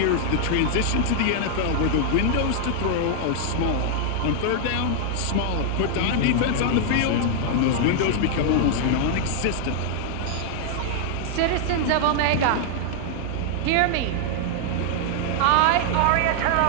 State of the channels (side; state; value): both; different; correlation -0.01